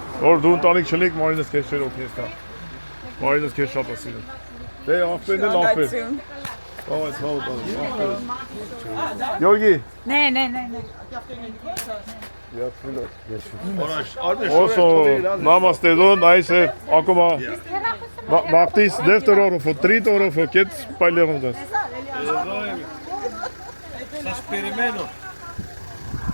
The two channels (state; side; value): inverted; both; correlation -1.00